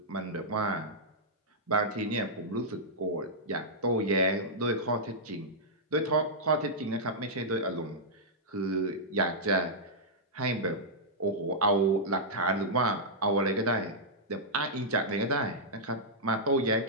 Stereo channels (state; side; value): normal; both; correlation -0.10